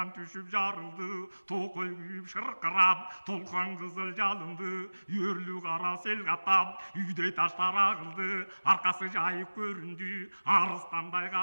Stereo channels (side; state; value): both; inverted; correlation -1.00